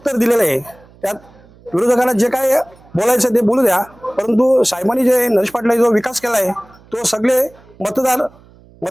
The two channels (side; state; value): right; noise; hum, 27 dB below the sound